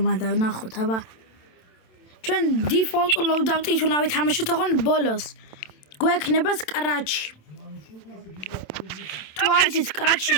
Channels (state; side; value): late; right; 27 ms